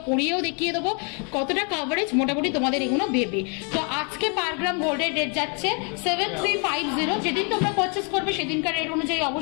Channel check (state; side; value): quieter; right; 36.6 dB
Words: পরিয়েও দেখিয়ে দেবো কতটা কাভারেজ মোটামুটি তোমাদের এগুলো দেবে। তো আজকে পার গ্রাম গোল্ডের রেট যাচ্ছে 7350। যেদিন তোমরা পারচেস করবে সেদিনকার রেট অনুযায়ী